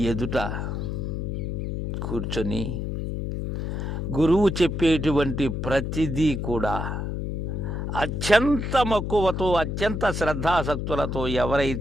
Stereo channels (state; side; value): noise; left; hum, 3 dB below the sound